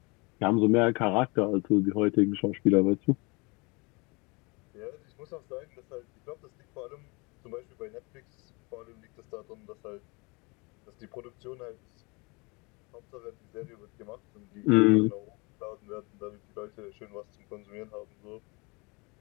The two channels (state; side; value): quieter; right; 28.2 dB